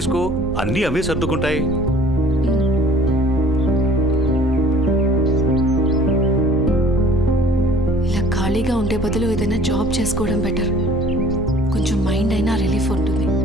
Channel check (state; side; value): normal; both; correlation 0.52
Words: అన్నీ అవే సర్దుకుంటాయి. ఇలా ఖాళీగా ఉండే బదులు ఏదైనా జాబ్ చేసుకోవడం బెటర్. కొంచెం మైండ్ అయినా రిలీఫ్ ఉంటుంది.